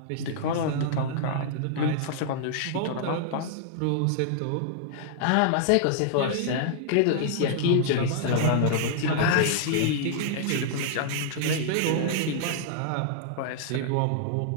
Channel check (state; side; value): different; both; correlation -0.01